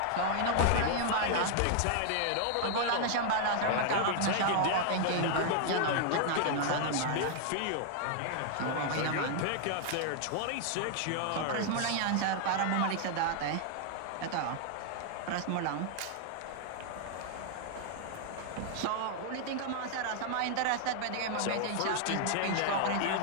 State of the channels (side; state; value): both; different; correlation 0.00